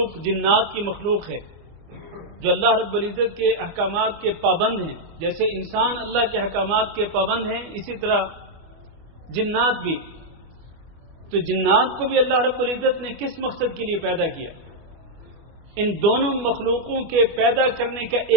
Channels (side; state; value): left; late; 24 ms